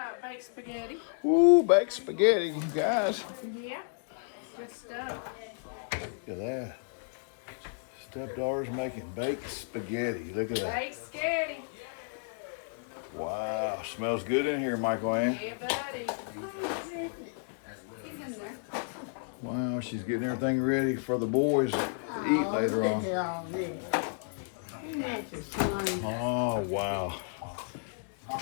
Baked spaghetti. Ooh, baked spaghetti, guys. Yeah, good stuff. Look at that. Stepdaughter's making baked spaghetti. Look at that. Baked spaghetti. Wow, smells good in here, Michael Ann. Yeah, buddy. He's in there. Wow, she's getting everything ready for the boys to eat later on. Oh, wow.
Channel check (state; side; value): silent; right; digital silence